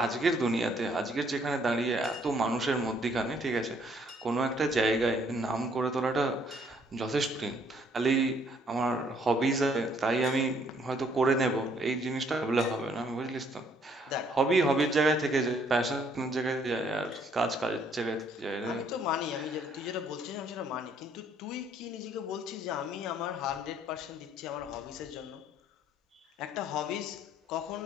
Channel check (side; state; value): both; normal; correlation 0.65